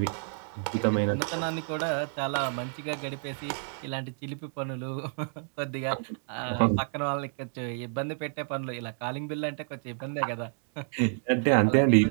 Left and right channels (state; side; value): silent; left; 56 dB below the other